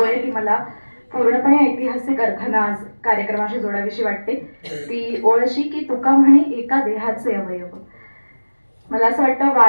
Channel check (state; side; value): inverted; both; correlation -1.00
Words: आहे ती मला पूर्णपणे ऐतिहासिक अर्थानं आज कार्यक्रमाशी जोडावीशी वाटते. ती ओळ अशी की तुका म्हणे एका देहाचे अवयव. मला असं वाटतं